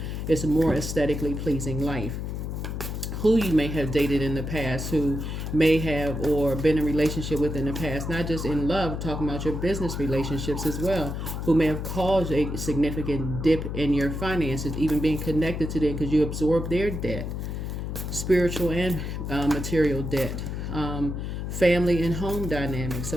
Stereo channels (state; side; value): noise; left; hum, 4 dB below the sound